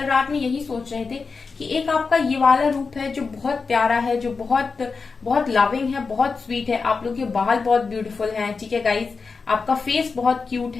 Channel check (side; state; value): right; quieter; 4.7 dB